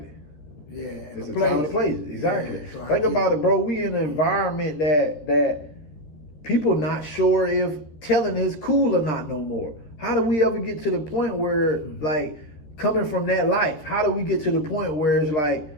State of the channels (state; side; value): late; right; 13 ms